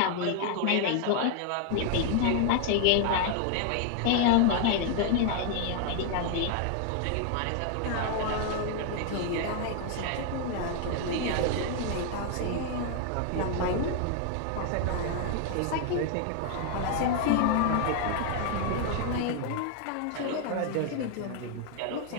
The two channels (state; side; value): different; both; correlation 0.00